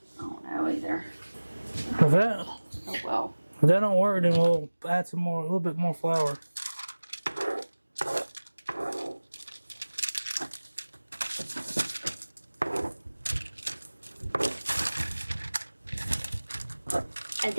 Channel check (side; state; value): both; inverted; correlation -1.00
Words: I don't know either. If that, Oh well. if that don't work, then we'll add a little bit more flour. And